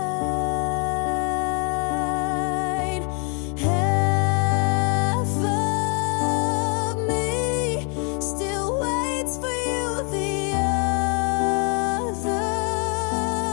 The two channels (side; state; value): right; quieter; 37.4 dB